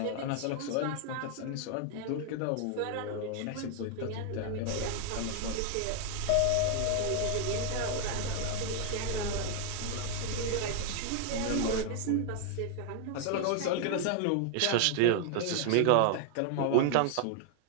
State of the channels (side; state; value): both; different; correlation 0.00